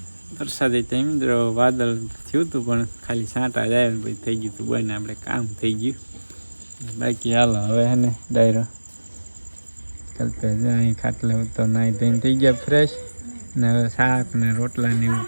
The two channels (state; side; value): inverted; both; correlation -1.00